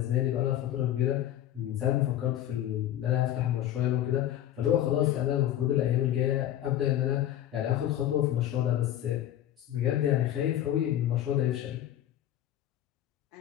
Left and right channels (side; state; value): right; quieter; 12.1 dB